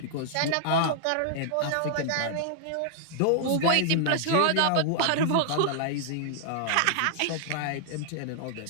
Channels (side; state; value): both; different; correlation -0.01